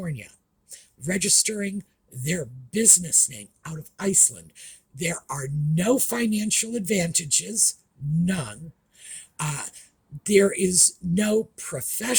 registering their business name out of Iceland, there are no financial advantages, none. There is no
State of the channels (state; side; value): identical; both; correlation 1.00